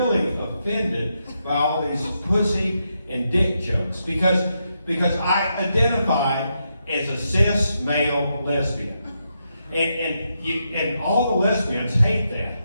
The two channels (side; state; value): both; inverted; correlation -0.83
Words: offended by all these pussy and dick jokes because I identify as a cis male lesbian. And all the lesbians hate that